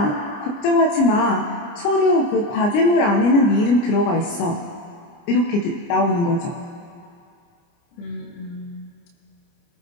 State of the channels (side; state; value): right; late; 29 ms